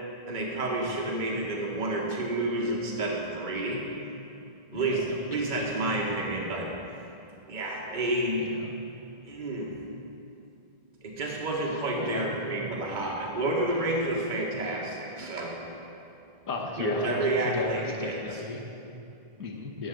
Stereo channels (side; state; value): left; late; 2.2 ms